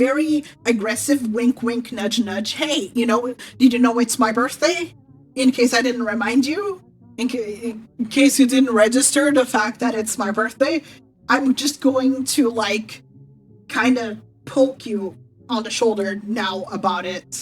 aggressive wink, wink, nudge, nudge. Hey, did you know it's my birthday? In case I didn't remind you, in case you didn't register the fact that it's my birthday, I'm just going to like kind of poke you on the shoulder now about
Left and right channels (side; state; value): both; identical; correlation 1.00